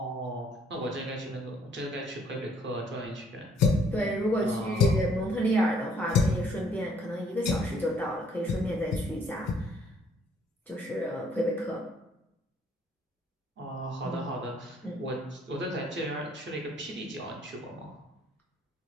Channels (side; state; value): both; normal; correlation 0.64